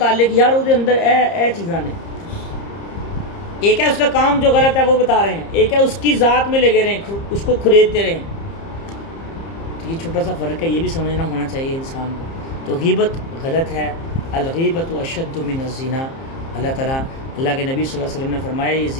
یار وہ اندر اے چیزاں نے، ایک ہے اس کا کام جو غلط ہے وہ بتا رہے ہیں، ایک ہے اس کی ذات میں لگے رہے ہیں، اس کو کھریدتے رہے. تو یہ چھوٹا سا فرق ہے، یہ بھی سمجھنا ہونا چاہیے انسان کو. تو غیبت غلط ہے. الغیبت اشد من الزنا. اللہ کے نبی صلی اللہ علیہ وسلم نے فرمایا یہ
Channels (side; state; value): right; late; 30 ms